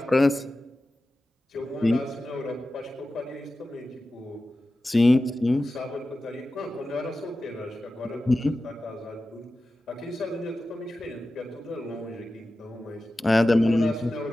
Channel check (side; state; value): both; normal; correlation 0.94